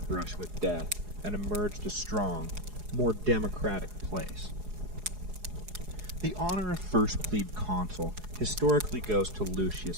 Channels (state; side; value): late; left; 4.8 ms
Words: brush with death and emerged a strong, more democratic place. The honor of first plebe consul historically goes to Lucius